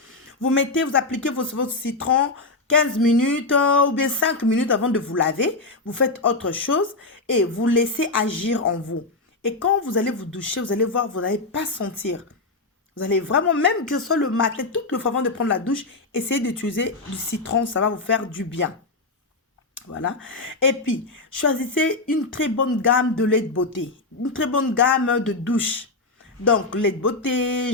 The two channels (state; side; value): quieter; right; 3.4 dB